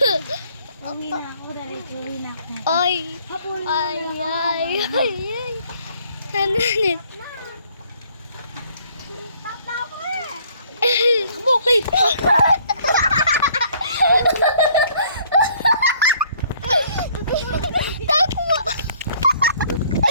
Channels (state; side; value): inverted; both; correlation -0.61